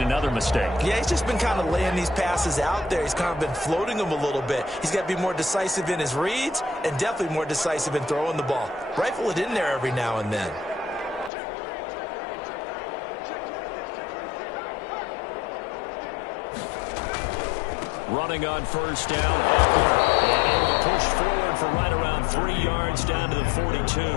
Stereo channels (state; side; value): drops out; right; at 11.3 s